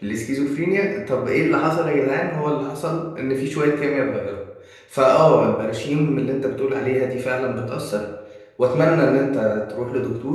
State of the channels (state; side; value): identical; both; correlation 1.00